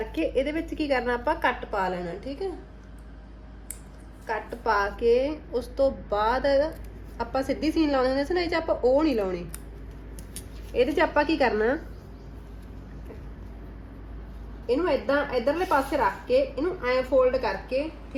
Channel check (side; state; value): both; identical; correlation 1.00